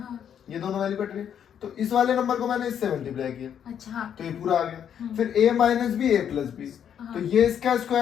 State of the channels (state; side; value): quieter; right; 8.8 dB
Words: ये दोनों वैल्यू कट रही है। तो इस वाले नंबर को मैंने इससे मल्टीप्लाई किया अच्छा हाँ तो ये पूरा आ गया। फिर a - b a + b, हाँ। तो ये इसका